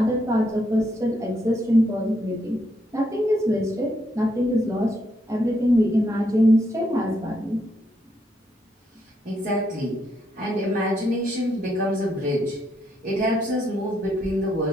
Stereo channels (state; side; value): normal; both; correlation 0.76